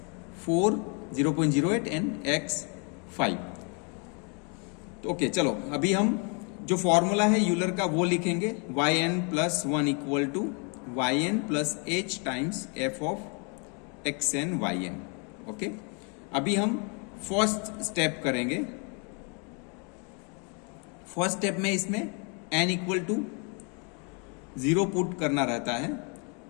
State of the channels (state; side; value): quieter; right; 36.2 dB